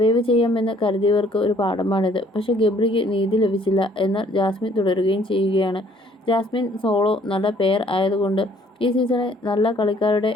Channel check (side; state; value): both; normal; correlation 0.60